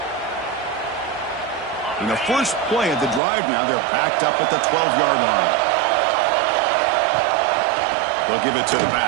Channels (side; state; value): left; drops out; at 3.2 s